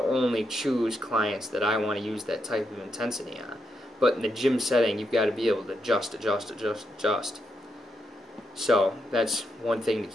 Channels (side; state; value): both; normal; correlation 0.81